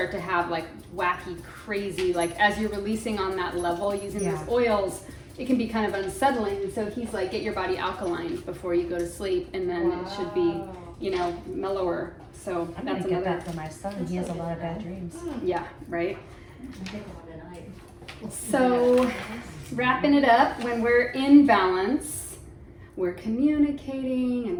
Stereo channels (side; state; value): both; identical; correlation 1.00